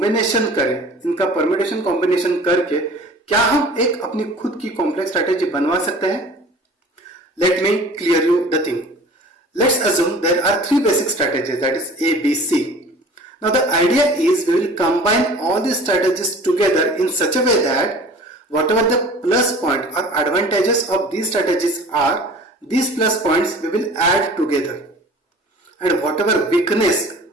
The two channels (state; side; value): normal; both; correlation 0.44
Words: करें, इनका परम्यूटेशन कॉम्बिनेशन करके क्या हम एक अपनी खुद की कॉम्प्लेक्स स्ट्रैटेजी बनवा सकते हैं? Let me clear you the thing. Let's assume there are three basic strategies, that is A, B, C. Now the idea is we will combine all these strategies together in such a way that whatever the plus point or advantages of these strategies are, these plus points we will add together, and whatever weakness